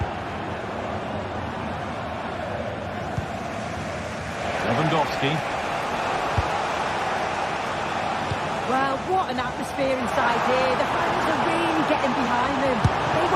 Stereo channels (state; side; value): identical; both; correlation 1.00